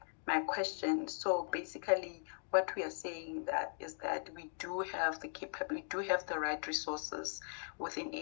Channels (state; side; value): silent; right; digital silence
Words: my question. So basically, what we are saying is that we do have the capability, we do have the right resources within